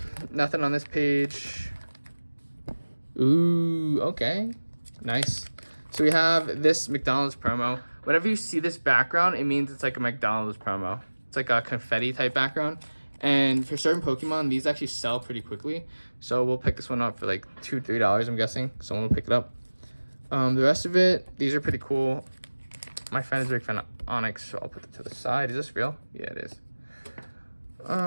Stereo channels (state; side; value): inverted; both; correlation -1.00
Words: on this page. Ooh, okay. Nice. So we have this McDonald's promo. Whenever you see this background, it means it's like a McDonald's promo. It's like a confetti type background. And for certain Pokemon, these actually sell pretty quickly. So we'll pick this one up for like $2, $3, I'm guessing. Someone will pick it up. The rest of it, these are pretty cool. My friend is a big fan of Onyx, so I'll put it to the side. Is this real? Yeah, it is.